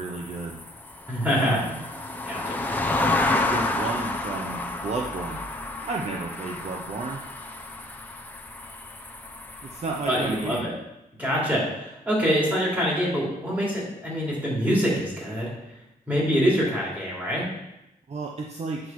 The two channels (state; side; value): normal; both; correlation 0.62